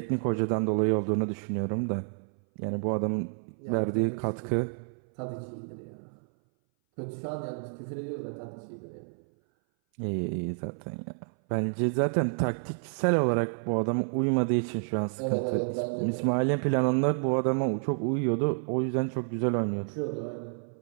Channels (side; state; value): left; silent; 58 dB below the other